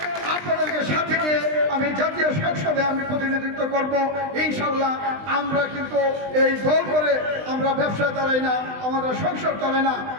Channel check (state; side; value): late; left; 20 ms